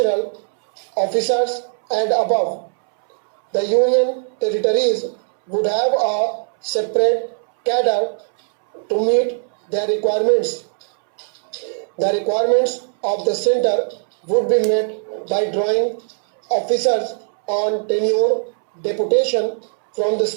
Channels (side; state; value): left; silent; 66 dB below the other